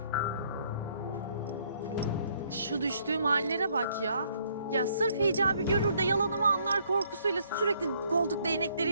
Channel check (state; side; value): inverted; both; correlation -0.67